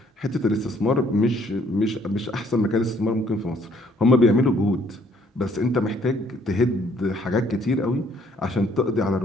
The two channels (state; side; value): normal; both; correlation 0.64